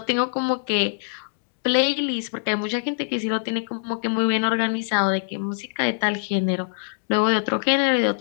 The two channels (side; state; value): right; silent; digital silence